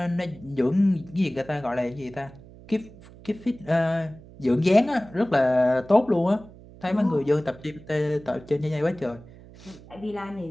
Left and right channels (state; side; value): noise; right; hum, 20 dB below the sound